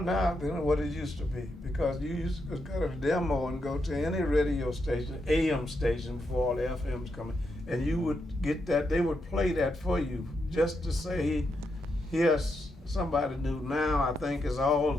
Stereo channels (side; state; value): both; normal; correlation 0.83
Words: than what it used to be, because you used to go to a demo and go to any radio station, AM station, before all the FMs coming, and you would get that, they would play that for you just to say, here's somebody new. Now I think is all